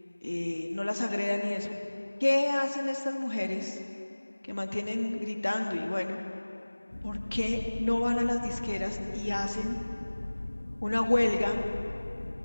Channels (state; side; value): inverted; both; correlation -1.00